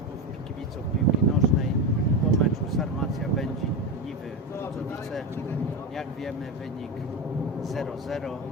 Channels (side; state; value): both; normal; correlation 0.16